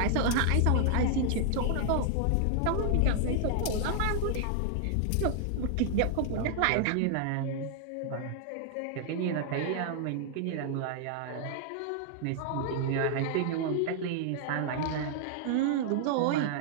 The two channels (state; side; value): different; both; correlation 0.00